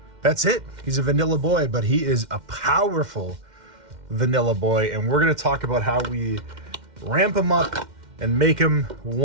That's it. He's a vanilla boy, but he is a powerful vanilla boy. And we're going to talk about how we ramp him up and make him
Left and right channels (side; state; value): left; late; 2.1 ms